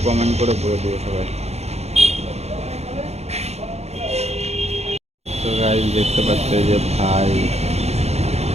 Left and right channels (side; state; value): left; late; 0.31 ms